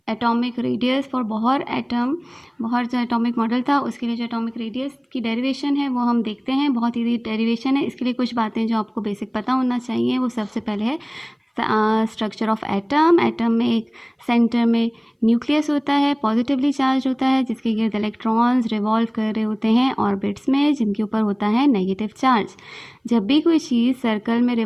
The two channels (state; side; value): identical; both; correlation 1.00